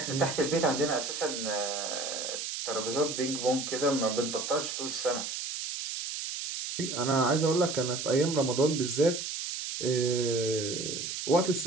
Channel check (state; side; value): noise; right; hiss, 5 dB below the sound